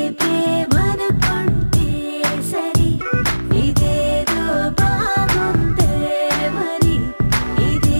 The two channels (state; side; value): inverted; both; correlation -1.00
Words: ప్రేమనుకుంటే సరి, ఇదేదో బాగుందే మరి,